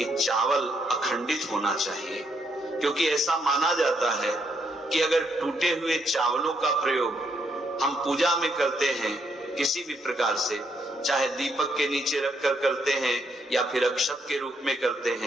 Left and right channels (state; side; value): normal; both; correlation 0.75